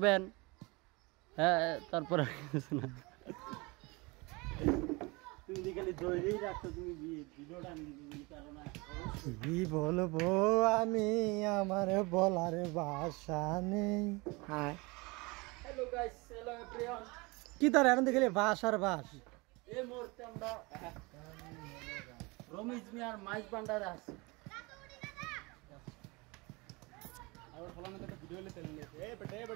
হ্যাঁ, তারপরে তুমি খালি ধরেই রাখছো, তুমি ভিডিওটা কি বলবো আমি, আমার বলার ভাষা নেই। Hello guys, hello everyone. কি তার এখন দেখলে বাস আর বাস। এই মুহূর্তে আমরা রমেশ মিয়ার মাইজ ভান্ডারে আছি। আর ফলানে তো ভিডিও লে তেল লে এ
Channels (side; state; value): left; quieter; 25.8 dB